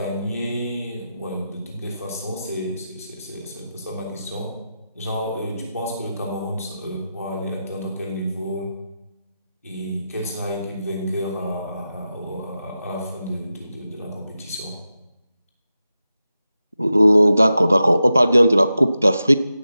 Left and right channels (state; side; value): inverted; both; correlation -0.90